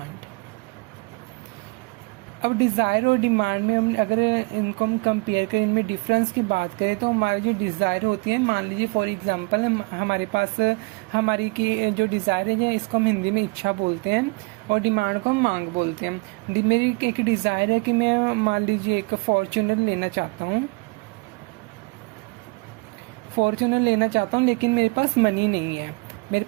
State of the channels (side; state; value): left; quieter; 27.4 dB